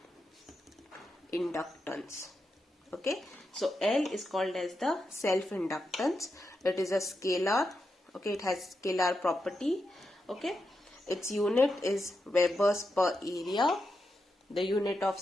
Okay, so L is called as the self-inductance. It is a scalar. Okay, it has scalar property. Okay, its unit is Webers per area. The unit of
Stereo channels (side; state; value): both; normal; correlation 0.86